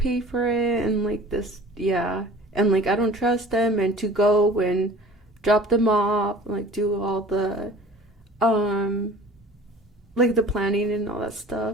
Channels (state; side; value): normal; both; correlation 0.45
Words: for it and like this, and like I don't trust them, and to go and drop them off, like do all the like the planning and all that